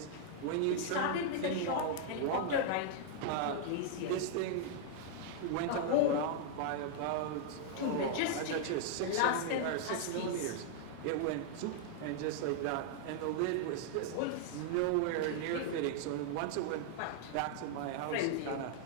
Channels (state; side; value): different; both; correlation -0.01